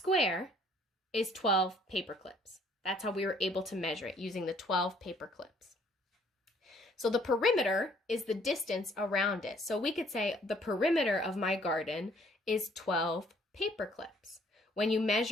is 12 paper clips. That's how we were able to measure it, using the 12 paper clips. So the perimeter is the distance around it. So we could say the perimeter of my garden is 12 paper clips. When you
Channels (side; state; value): both; normal; correlation 0.61